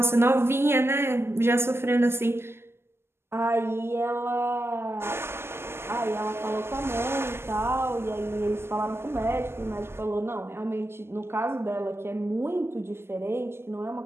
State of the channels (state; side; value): late; left; 0.12 ms